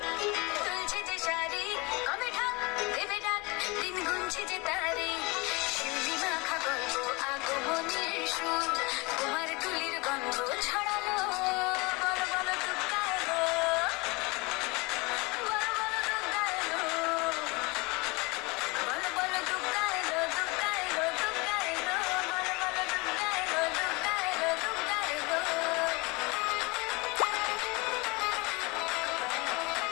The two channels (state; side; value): quieter; right; 26.2 dB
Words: দুলছে যে শাড়ি, কবে ঠাক দেবে ডাক, দিন গুনছে যে তারি। শিউলি মাখা গল্প আগমনের সুর, তোমার তুলির গন্ধ ছড়ালো। বলো বলো দুর্গা এলো, বলো বলো দুর্গা এলো, বলো বলো দুর্গা এলো, দুর্গা এলো, দুর্গা এলো, বলো বলো দুর্গা এলো, দুর্গা এলো, দুর্গা এলো।